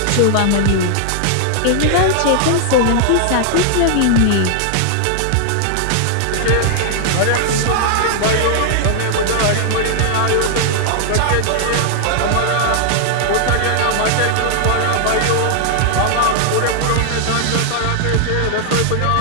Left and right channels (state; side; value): different; both; correlation -0.01